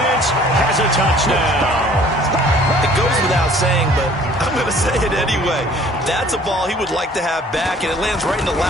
has a touchdown. It goes without saying, but I'm going to say it anyway. That's a ball he would like to have back, and it lands right in the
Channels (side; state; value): both; normal; correlation 0.54